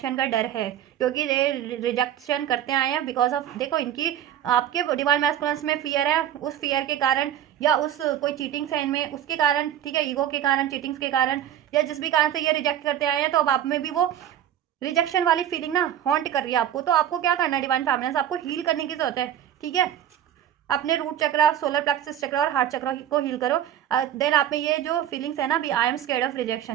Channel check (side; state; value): left; quieter; 10.7 dB